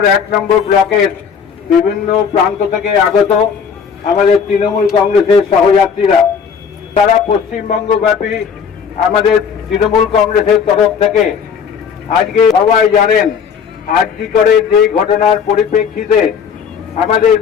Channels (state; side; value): quieter; right; 6.7 dB